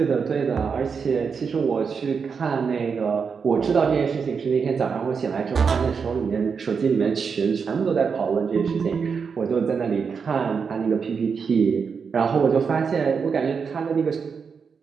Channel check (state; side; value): quieter; left; 5.9 dB